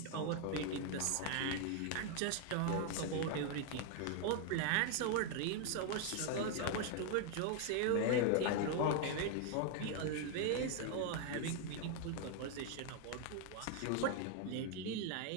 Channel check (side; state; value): both; different; correlation 0.00